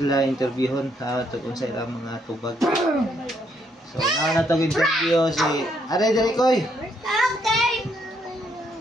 interviewon tungkol sa ilang mga tubag. So na tong interview si Aray diri koy.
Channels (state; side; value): normal; both; correlation 0.73